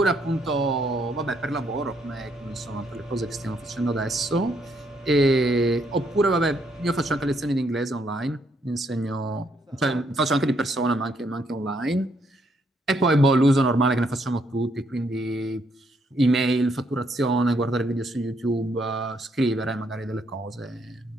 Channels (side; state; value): both; normal; correlation 0.73